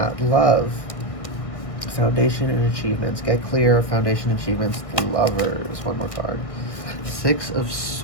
love. Foundation and achievements. Get clear. Foundation achievements. The Lovers. One more card. Six of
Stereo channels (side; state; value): right; late; 1.6 ms